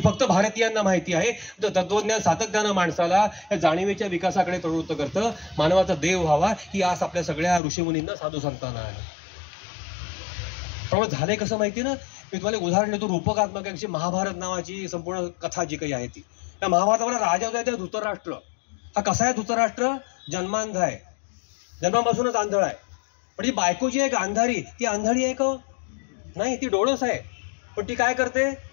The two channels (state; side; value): drops out; right; at 7.6 s